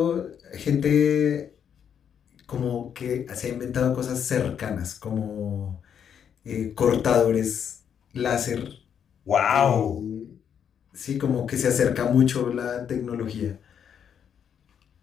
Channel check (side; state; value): right; quieter; 8.2 dB